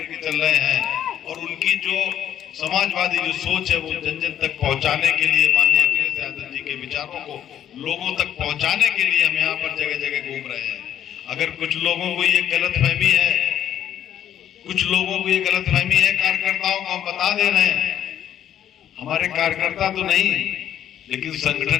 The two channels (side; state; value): right; quieter; 10.4 dB